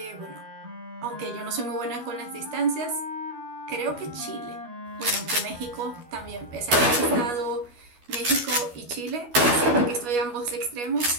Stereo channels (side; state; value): left; late; 12 ms